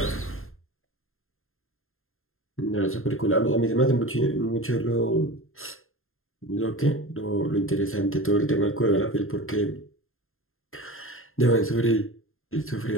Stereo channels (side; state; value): right; late; 0.61 ms